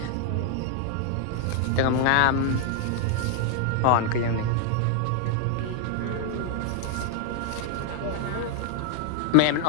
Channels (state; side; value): different; both; correlation 0.00